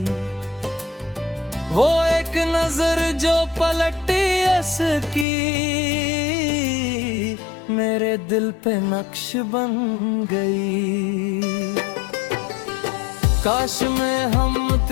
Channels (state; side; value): drops out; right; at 5.2 s